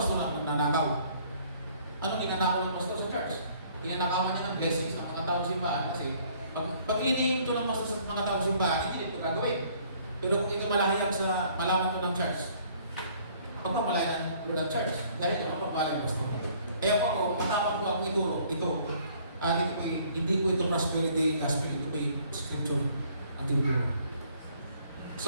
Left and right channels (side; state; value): both; inverted; correlation -0.60